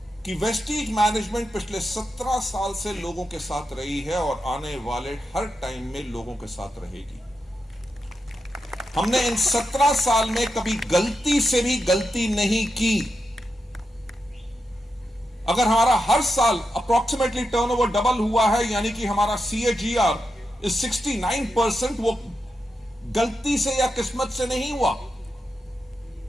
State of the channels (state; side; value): normal; both; correlation 0.87